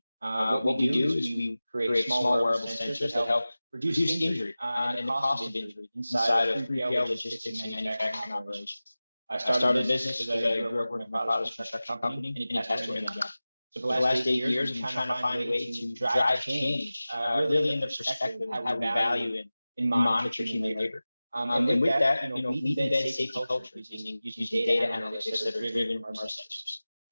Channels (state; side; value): inverted; both; correlation -0.97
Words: What we do is we create small wearable sensors that help reduce injury and the cost of injury inside of 3PL logistics and manufacturing operations. I started a business because I grew up working in my father's construction company and passed away in the job. So for the last 8 years, I'm trying to find a way to drive change, really in the perspective of how we value and monitor human labor. And with that, we embed safety culture using data analytics that are driven from our